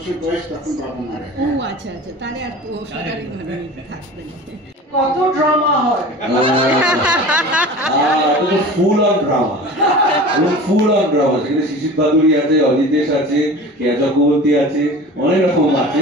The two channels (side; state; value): both; normal; correlation 0.38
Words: বয়স তখন বাবা মারা ও আচ্ছা আচ্ছা, তাহলে আর সাধারণভাবে থাকবেন। কত ড্রামা হয়, full on drama, full on drama. সেখানে শিশির বাদুড়ি আছে, অজিতেশ আছে, কেয়া চক্রবর্তী আছে, অনেক রকম আছে,